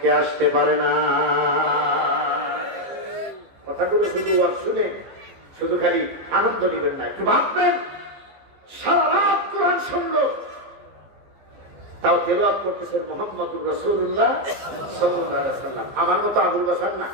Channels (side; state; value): left; late; 15 ms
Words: আসতে পারে না। কথাগুলো শুধু আর শুনে শুধু খালি আনন্দ নেবেন না, একটু ভাববেন। সারা রাত কোরআন শুনলো, তাও তেলাওয়াত করতেছেন মুহাম্মদুর রাসূলুল্লাহ সাল্লাল্লাহু আলাইহি ওয়াসাল্লাম। আমার মতো আবুল বাশার না,